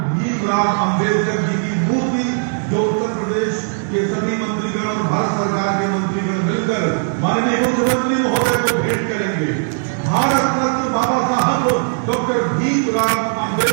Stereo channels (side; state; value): left; silent; 61 dB below the other